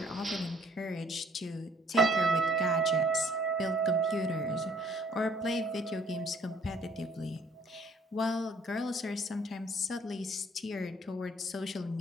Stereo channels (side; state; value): both; normal; correlation 0.61